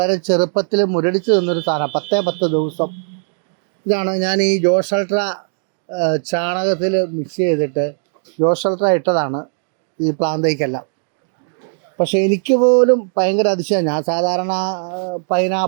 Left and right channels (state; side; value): silent; left; digital silence